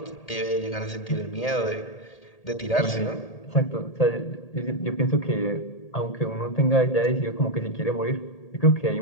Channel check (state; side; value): late; right; 1.8 ms